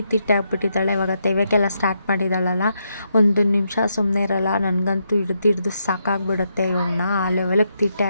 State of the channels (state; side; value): inverted; both; correlation -0.80